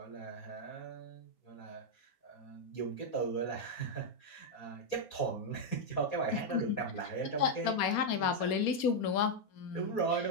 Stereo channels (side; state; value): right; late; 4.3 ms